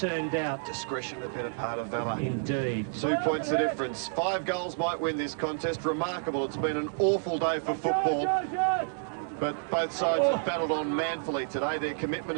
out. Discretion, the better part of valour. Indeed. 2 points the difference. 5 goals might win this contest. Remarkable. It's been an awful day for football. But both sides have battled on manfully today. Their commitment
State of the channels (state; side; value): silent; left; digital silence